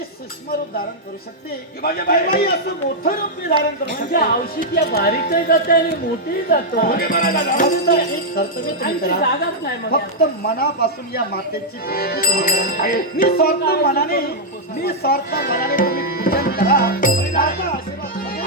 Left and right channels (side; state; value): both; normal; correlation -0.05